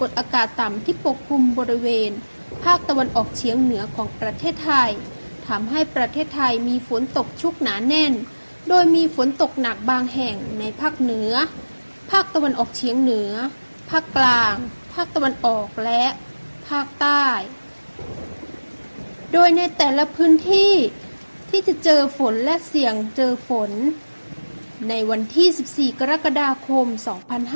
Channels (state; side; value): inverted; both; correlation -1.00